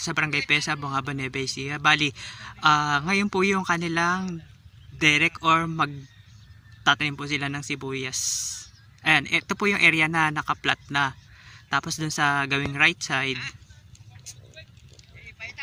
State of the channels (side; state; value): both; identical; correlation 1.00